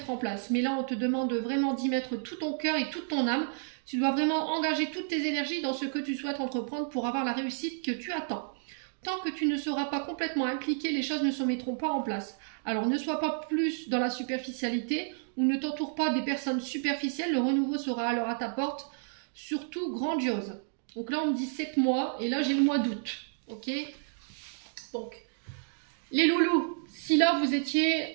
en place. Mais là, on te demande vraiment d'y mettre tout ton cœur et toute ton âme. Tu dois vraiment engager toutes tes énergies dans ce que tu souhaites entreprendre pour avoir la réussite que tu attends. Tant que tu ne seras pas complètement impliqué, les choses ne se mettront pas en place. Alors ne sois pas plus dans la superficialité ou ne t'entoure pas des personnes superficielles, le renouveau sera alors à ta porte, surtout grandiose. Donc là on me dit 7 mois et là j'ai le mois d'août. Ok? Donc, les loulous, si là vous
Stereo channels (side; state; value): left; silent; digital silence